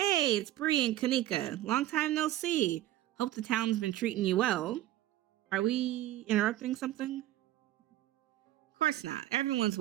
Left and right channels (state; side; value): quieter; left; 14.4 dB